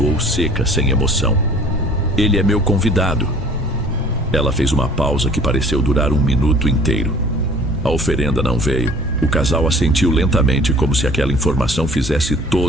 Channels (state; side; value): normal; both; correlation 0.50